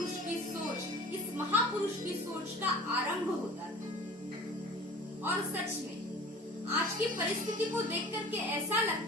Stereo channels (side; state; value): both; normal; correlation 0.43